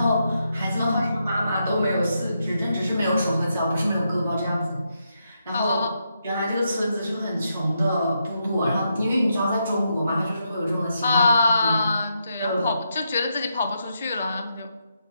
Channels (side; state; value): both; inverted; correlation -0.82